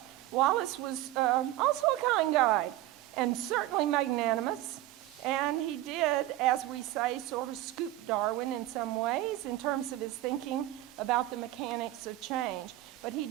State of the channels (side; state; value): left; quieter; 15.2 dB